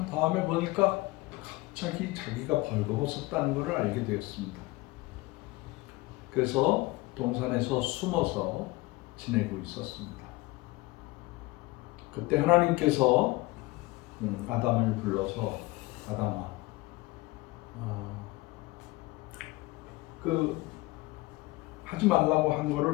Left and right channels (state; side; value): quieter; right; 21.3 dB